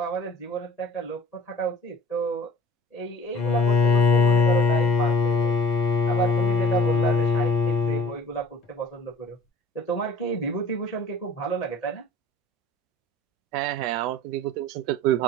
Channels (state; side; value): normal; both; correlation 0.48